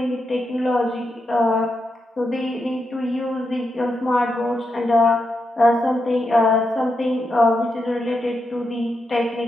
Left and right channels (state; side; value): normal; both; correlation 0.85